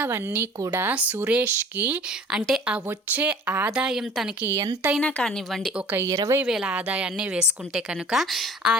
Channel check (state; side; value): normal; both; correlation 0.47